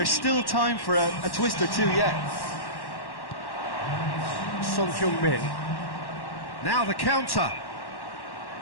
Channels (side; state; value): right; late; 1.1 ms